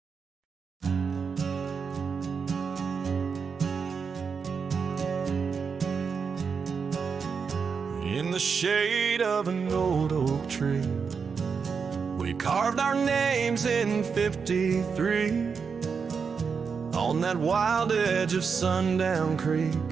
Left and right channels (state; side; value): quieter; left; 5.8 dB